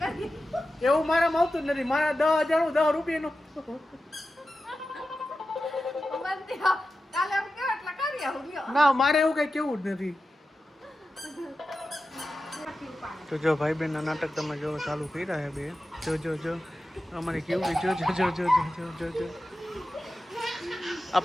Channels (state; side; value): normal; both; correlation 0.92